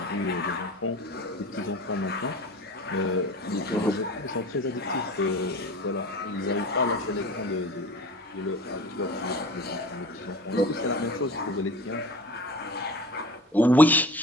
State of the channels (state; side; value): normal; both; correlation 0.38